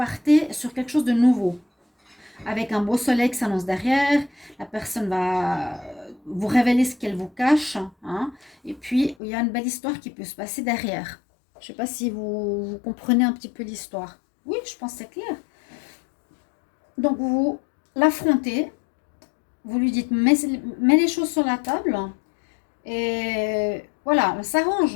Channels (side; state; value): right; drops out; at 9.2 s